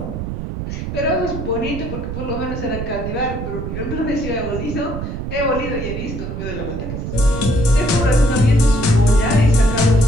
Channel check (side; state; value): right; noise; rumble, 6 dB below the sound